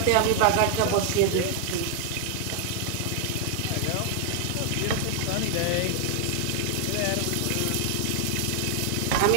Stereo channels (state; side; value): different; both; correlation 0.00